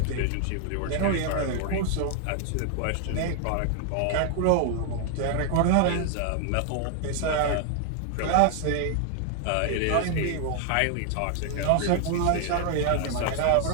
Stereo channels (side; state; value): both; different; correlation 0.00